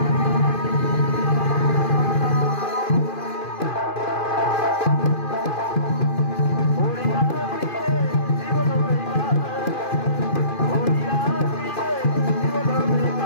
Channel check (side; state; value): right; late; 2.5 ms